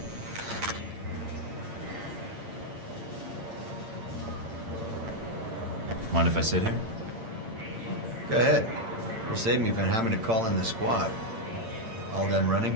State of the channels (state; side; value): late; left; 8.8 ms